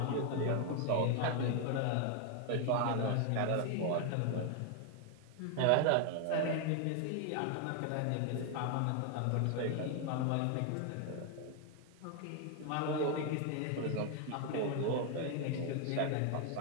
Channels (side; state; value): both; different; correlation 0.00